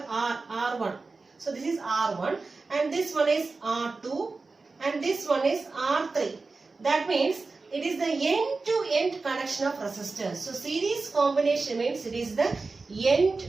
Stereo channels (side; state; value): left; quieter; 3.9 dB